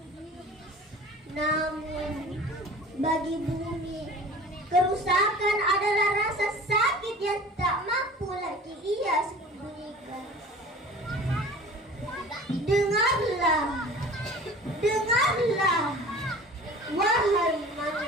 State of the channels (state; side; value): normal; both; correlation 0.42